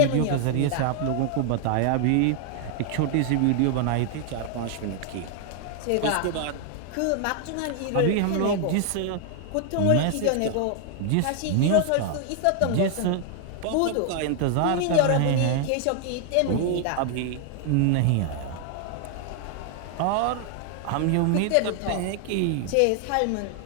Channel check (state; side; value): different; both; correlation 0.00